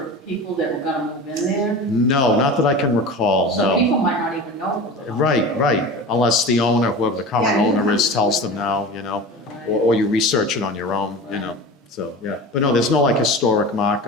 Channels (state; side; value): normal; both; correlation 0.32